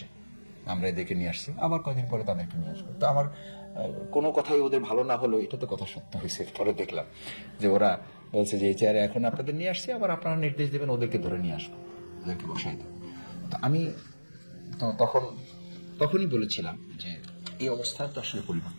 আমরা এদেরকে নিয়ে আসছি, আবার কয়েকদিন পরে তাদেরকে নিয়ে আসবো। তো আমার কোনো কথাই ওদের ভালো না হলো, এটা তো কথা সত্য হয়েছে। পরে দেখলাম যে ওরা বলছে যে এই চেয়ারে এখন আপনাদের নিয়ে আসছি, আবার আপনারা নির্দেশ দেবেন ওদেরকে ধরে নিয়ে আসবো, ওদেরকে বসাই দেবো। তো আমি তখনই বলেছিলাম যে এই অবস্থা তো আসলে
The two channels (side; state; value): both; inverted; correlation -1.00